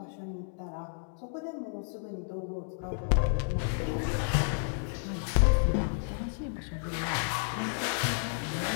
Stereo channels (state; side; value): silent; right; digital silence